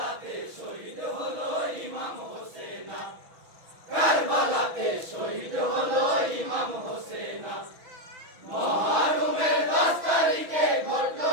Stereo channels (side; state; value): left; late; 6.1 ms